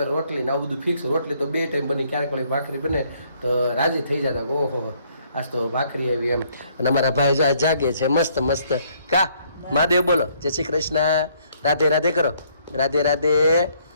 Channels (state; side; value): inverted; both; correlation -0.66